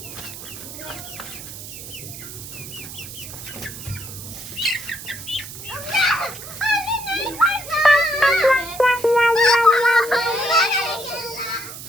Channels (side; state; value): right; noise; hiss, 12 dB below the sound